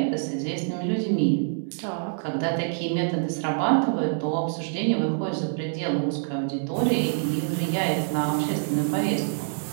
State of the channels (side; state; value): left; silent; 61 dB below the other